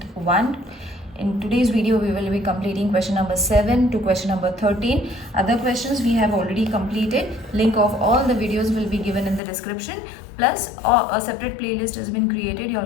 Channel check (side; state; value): right; drops out; at 9.4 s